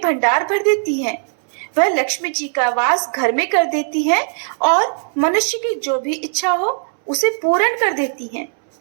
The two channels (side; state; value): left; silent; 67 dB below the other